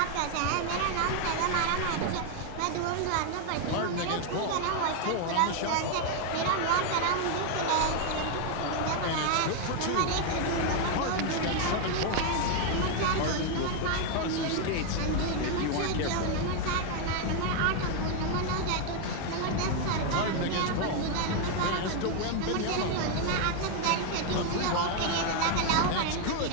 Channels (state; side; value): different; both; correlation 0.01